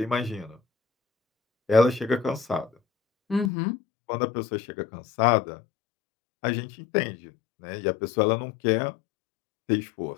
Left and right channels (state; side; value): drops out; right; at 3.5 s